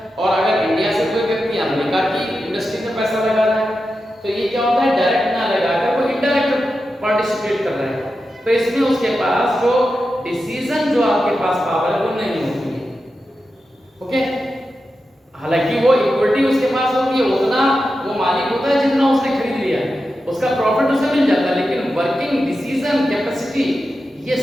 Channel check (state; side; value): normal; both; correlation 0.90